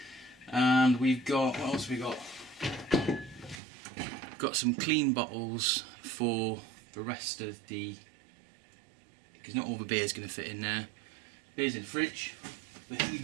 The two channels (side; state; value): left; drops out; at 3.6 s